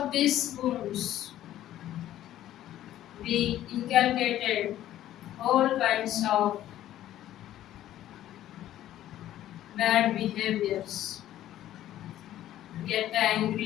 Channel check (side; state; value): right; quieter; 12.8 dB